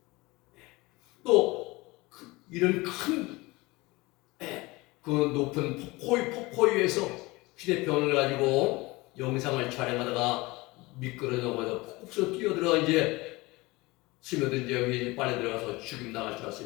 또 이런 큰 그 높은 폭포 위에서 휴대폰을 가지고 영상을 촬영하다가 미끄러져서 폭포에서 뛰어들어 이제 스며든 여기 빨려 들어가서 죽임 당할 줄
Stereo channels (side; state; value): right; quieter; 22.4 dB